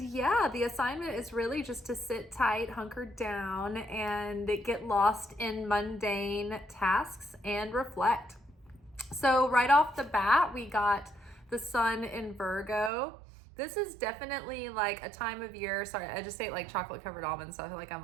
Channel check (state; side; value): drops out; left; at 12.9 s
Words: the assignment is really just to sit tight, hunker down, and get lost in mundane tasks and reflect. So right off the bat, we got the sun in Virgo. This is definitely like a time of year. Sorry, I just ate like chocolate covered almonds, so I feel like I'm